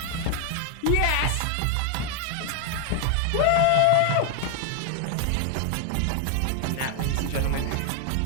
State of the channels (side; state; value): both; different; correlation 0.00